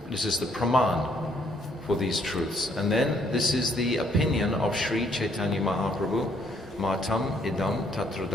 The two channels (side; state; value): both; normal; correlation 0.67